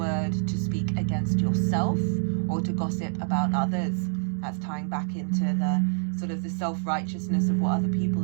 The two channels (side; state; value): left; silent; digital silence